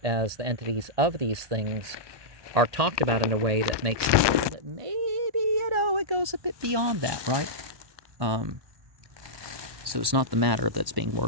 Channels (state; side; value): late; left; 1.2 ms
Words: as the entities of these things are talked about in a way that makes it feel that maybe, it goes a bit beyond that, right? So it's not the matter that's being